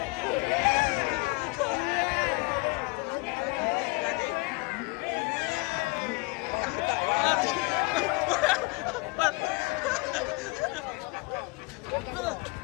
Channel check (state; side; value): quieter; right; 26.8 dB